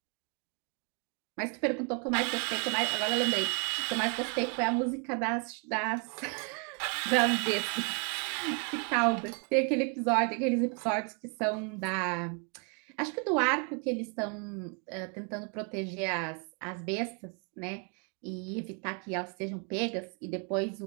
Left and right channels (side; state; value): left; quieter; 36.9 dB